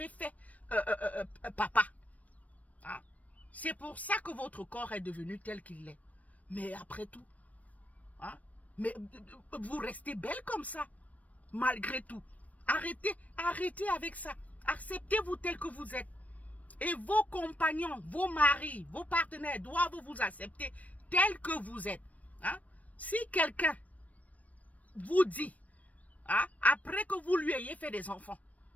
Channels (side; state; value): right; late; 0.070 ms